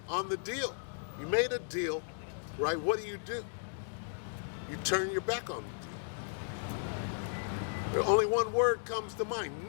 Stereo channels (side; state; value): right; silent; digital silence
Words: on the deal. You made a deal, right? What do? You turn your back on the deal. Only one word comes to mind,